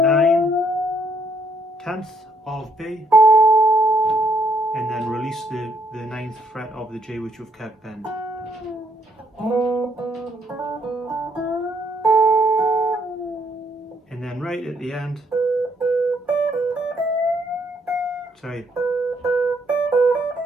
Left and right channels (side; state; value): both; normal; correlation 0.71